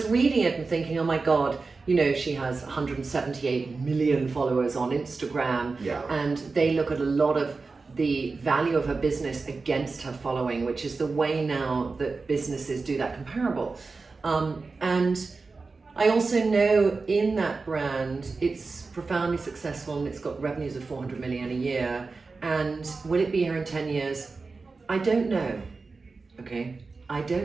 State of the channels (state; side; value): quieter; left; 4.1 dB